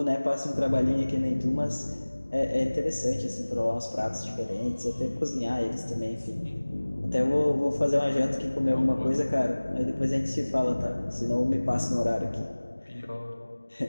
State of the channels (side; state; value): both; inverted; correlation -1.00